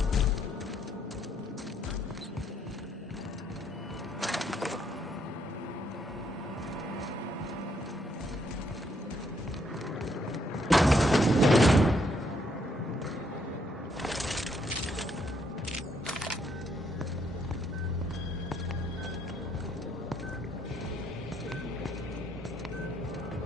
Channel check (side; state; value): both; normal; correlation 0.72